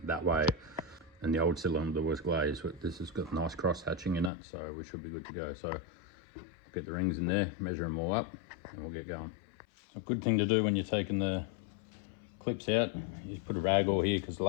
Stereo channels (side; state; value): right; drops out; at 4.3 s